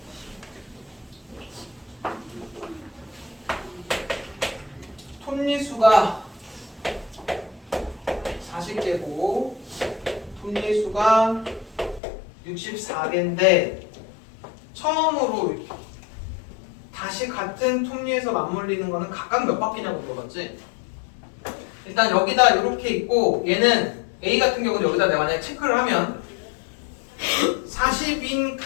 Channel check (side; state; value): right; drops out; at 12.0 s